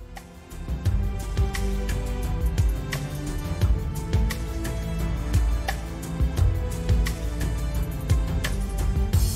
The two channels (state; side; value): identical; both; correlation 1.00